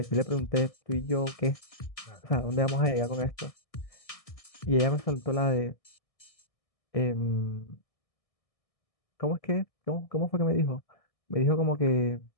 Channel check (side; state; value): right; late; 1.6 ms